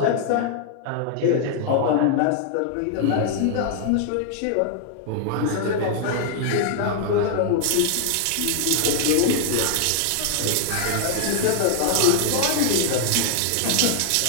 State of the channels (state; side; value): different; both; correlation 0.00